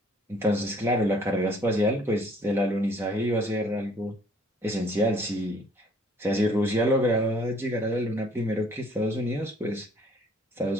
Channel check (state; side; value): normal; both; correlation 0.59